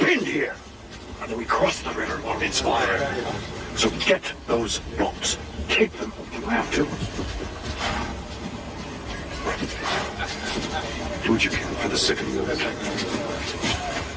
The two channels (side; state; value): both; identical; correlation 1.00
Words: here. And then we cross the river while it's fire. So get those boats. Take them if you have to. Do what you can for the sick and wounded.